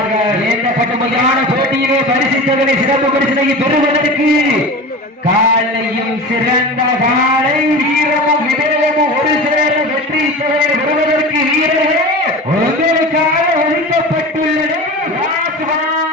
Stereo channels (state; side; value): normal; both; correlation 0.32